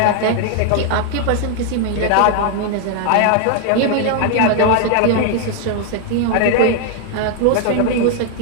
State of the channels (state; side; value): different; both; correlation 0.00